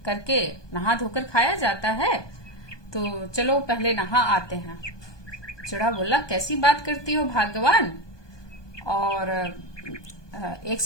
करके नहा धोकर खाया जाता है, तो चलो पहले नहा आते हैं। चिड़ा बोला कैसी बात करती हो भाग्यवान, और एक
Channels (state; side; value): late; right; 1.2 ms